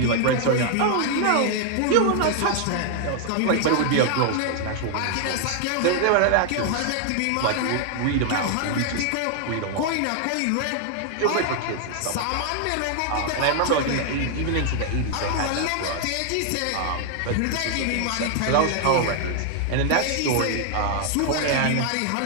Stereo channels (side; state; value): both; different; correlation 0.00